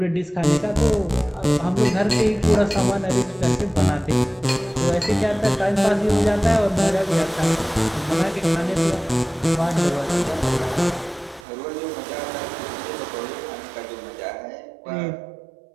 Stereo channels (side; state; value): left; drops out; at 11.5 s